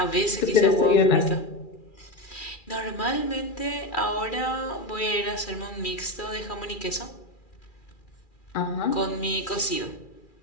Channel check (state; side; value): late; right; 2.4 ms